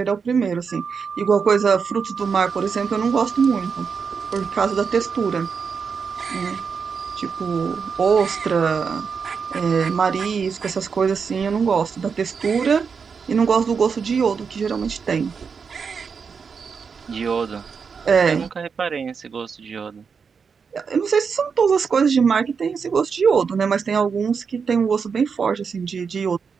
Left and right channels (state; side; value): quieter; left; 5.8 dB